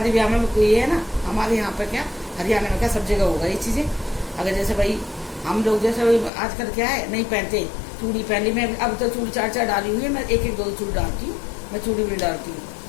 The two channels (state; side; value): drops out; right; at 6.3 s